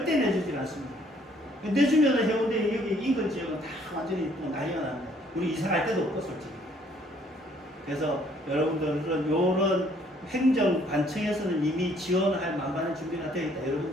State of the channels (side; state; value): both; normal; correlation 0.63